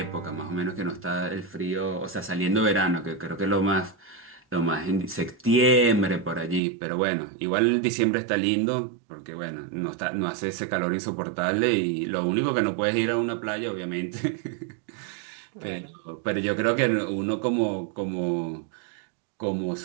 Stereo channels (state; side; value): drops out; left; at 6.6 s